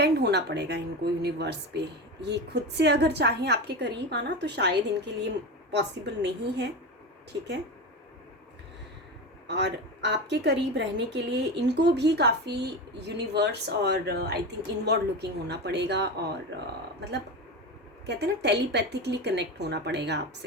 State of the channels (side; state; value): both; normal; correlation 0.22